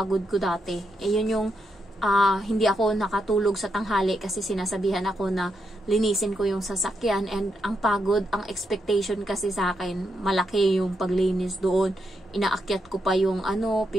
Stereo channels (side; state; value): both; normal; correlation 0.82